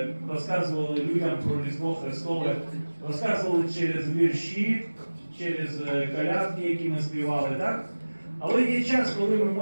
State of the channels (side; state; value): both; inverted; correlation -1.00